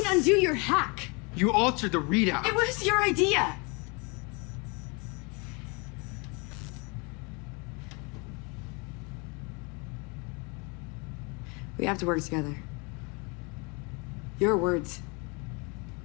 undo your hack. You altered the readout. It was your idea. We have to work together. Your words.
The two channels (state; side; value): quieter; right; 30.4 dB